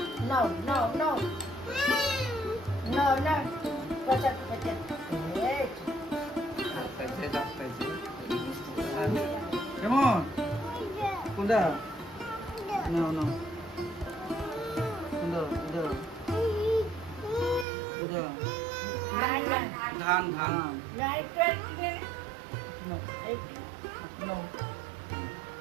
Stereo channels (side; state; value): left; drops out; at 17.7 s